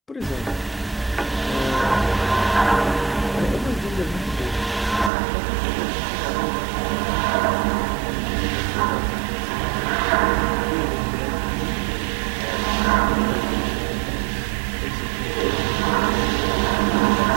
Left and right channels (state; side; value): drops out; left; at 5.1 s